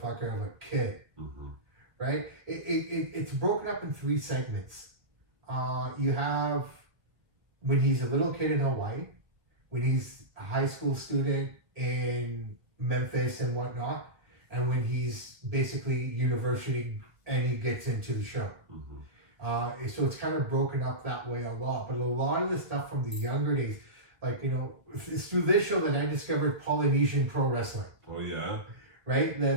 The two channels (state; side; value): late; left; 1.5 ms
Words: of a kid. Right? It's broken up in 3 segments. You have when he's a little kid in Hawaii, when he's a high school student in Memphis and whatnot, and when he's basically university and he gets into the show. So it's kind of broken up that way a lot. But a lot of the stuff from the younger days, like, you know, it's through this show that I discovered Polynesian pro wrestling. Oh, yeah? Right?